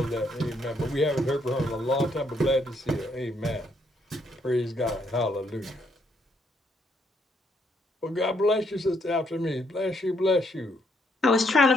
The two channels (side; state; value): both; normal; correlation 0.73